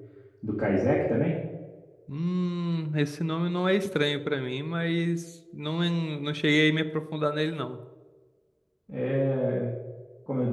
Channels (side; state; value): both; identical; correlation 1.00